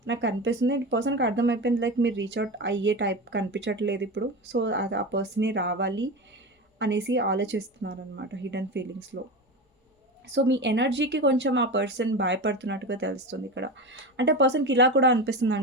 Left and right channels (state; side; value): normal; both; correlation 0.24